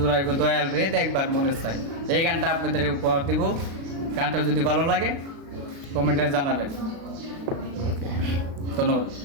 দয়াল রে দেখবার মনে চাই। এই গানটা আপনাদের উপহার দিব। গানটা যদি ভালো লাগে কমেন্টে জানাবেন। ওকে, ধন্যবাদ।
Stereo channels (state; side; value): late; left; 36 ms